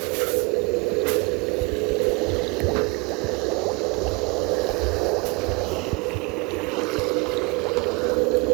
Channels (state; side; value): quieter; left; 28.3 dB